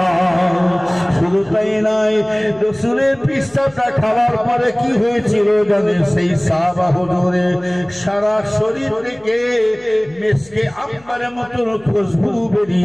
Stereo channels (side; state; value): left; noise; hum, 28 dB below the sound